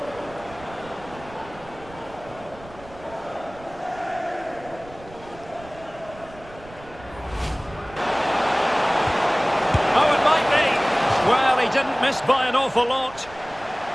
Well, he didn't miss by an awful lot.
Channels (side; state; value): right; noise; rumble, 20 dB below the sound